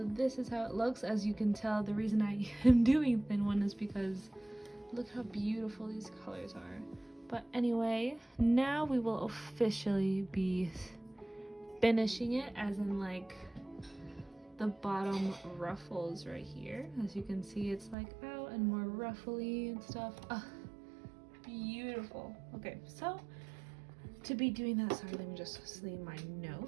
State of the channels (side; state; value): left; drops out; at 17.9 s